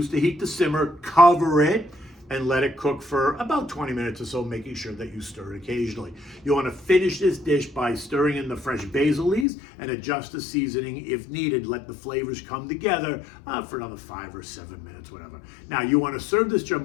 the heat to simmer, cover it, and let it cook for about 20 minutes or so, making sure that you stir it occasionally. You wanna finish this dish by stirring in the fresh basil leaves and adjust the seasoning if needed. Let the flavors come together for another 5 or 7 minutes, whatever. Now, you wanna serve this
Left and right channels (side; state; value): right; drops out; at 9.5 s